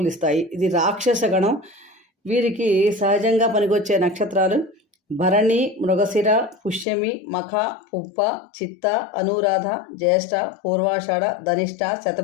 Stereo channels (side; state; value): right; drops out; at 6.9 s